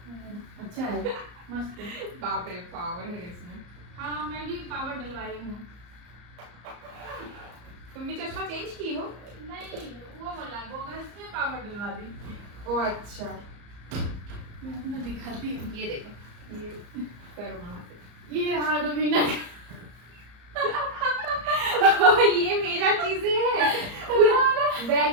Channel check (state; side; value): late; left; 34 ms